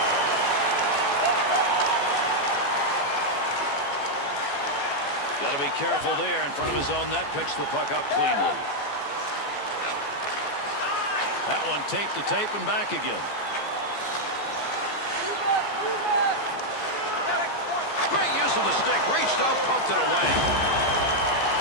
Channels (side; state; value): right; late; 14 ms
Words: Got to be careful there in front of his own net. Picks the puck up cleanly. That one tape to tape and back again. Great use of the stick. Reached out, poked it away.